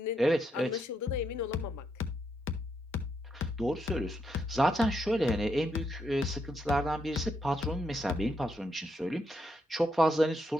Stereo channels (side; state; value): both; normal; correlation 0.79